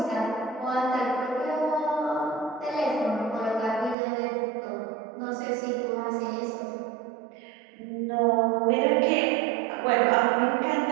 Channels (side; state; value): left; drops out; at 4.0 s